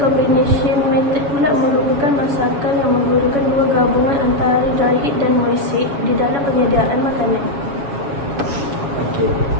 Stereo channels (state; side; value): late; left; 7.2 ms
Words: combination method pula merupakan masakan yang menggunakan dua gabungan antara dry heat dan moist di dalam penyediaan makanan. Okey,